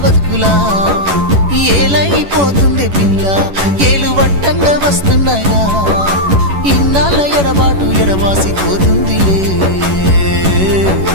బతుకులా ఏలైపోతుంది పిల్ల ఏలు వట్టంగా వస్తున్నాయా ఇన్నాళ్ళ ఎడబాటు ఎడవాసిపోతుందిలే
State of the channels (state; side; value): late; left; 11 ms